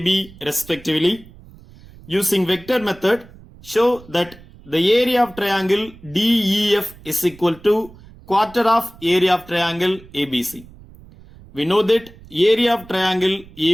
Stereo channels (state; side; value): noise; right; rumble, 22 dB below the sound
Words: respectively. Using vector method, show that the area of triangle DEF is equal to quarter of area of triangle ABC. We know that area of triangle